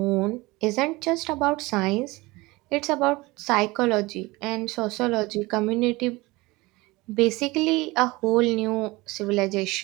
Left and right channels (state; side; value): quieter; left; 22.1 dB